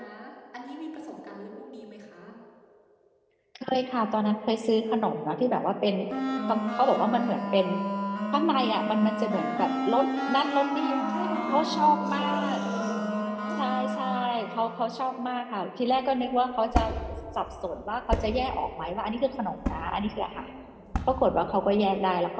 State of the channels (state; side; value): identical; both; correlation 1.00